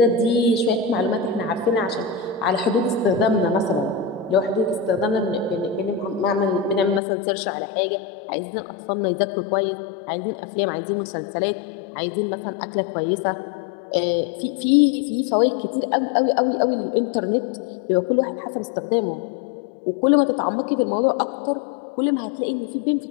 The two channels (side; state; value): right; drops out; at 7.0 s